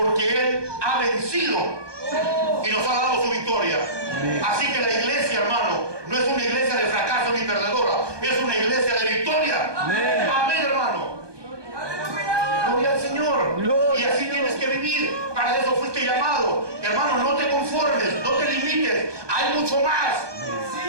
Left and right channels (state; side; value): late; left; 1.2 ms